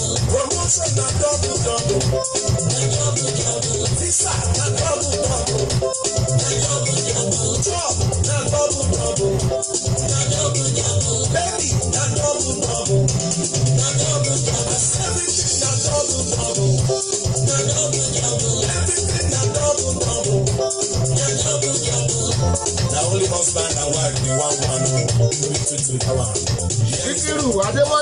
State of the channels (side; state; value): both; identical; correlation 1.00